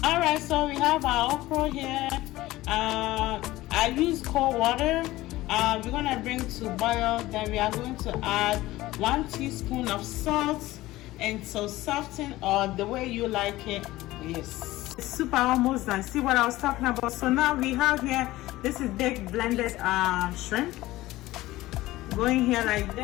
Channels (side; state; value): right; quieter; 17.4 dB